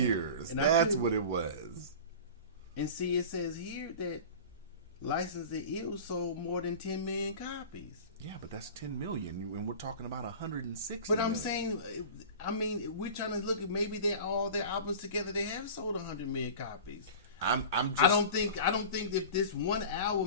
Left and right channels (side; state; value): both; inverted; correlation -0.35